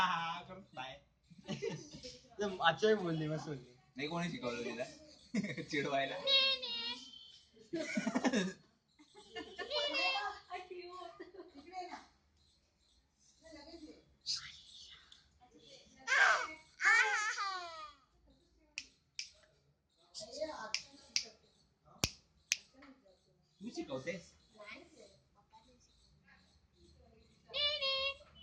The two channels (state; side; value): identical; both; correlation 1.00